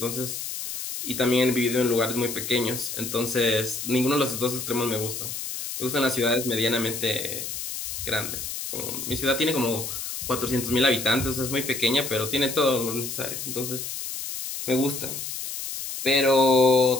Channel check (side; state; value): left; noise; hiss, 6 dB below the sound